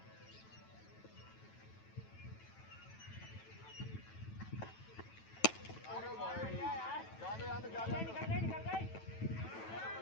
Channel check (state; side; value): late; right; 9.1 ms